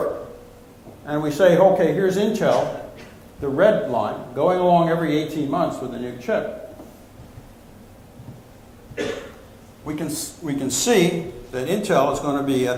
and we say, okay, here's Intel, the red line, going along every 18 months with a new chip, we can see that Intel is going to be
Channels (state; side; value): identical; both; correlation 1.00